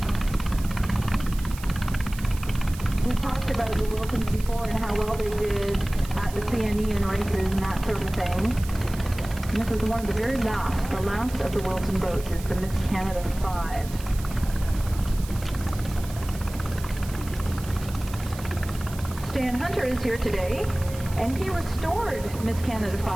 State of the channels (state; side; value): noise; right; hiss, 16 dB below the sound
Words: Before and how well they did at the CNE and races and that sort of thing. And this is one of the very last. The last of the Wilson boats is the Miss Canada 5. Stan Hunter is here today, and he restored Miss Canada